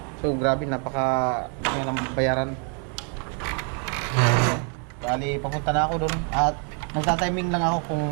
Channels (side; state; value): left; quieter; 39.7 dB